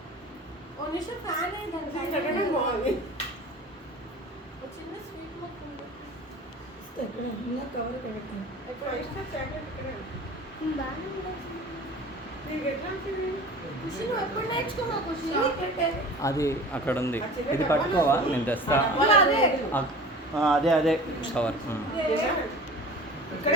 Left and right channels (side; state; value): both; normal; correlation 0.40